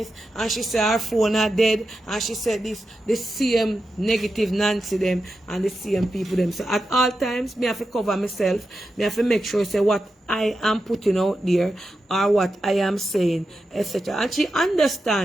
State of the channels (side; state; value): both; normal; correlation 0.89